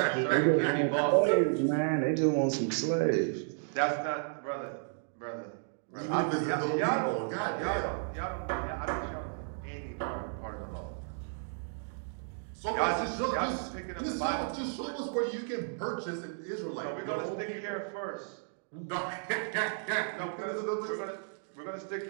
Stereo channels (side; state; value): left; silent; digital silence